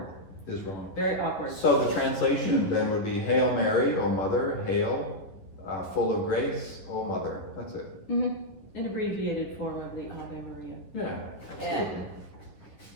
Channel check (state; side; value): late; right; 11 ms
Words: Is wrong. Very awkward. So the translation then would be Hail Mary, O Mother, hail, full of grace, O Mother. That's it. Mm-hmm. An abbreviated form of the Ave Maria. Yeah, absolutely.